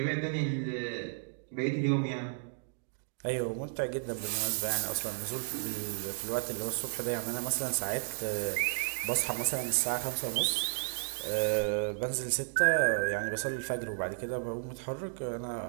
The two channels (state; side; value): silent; left; digital silence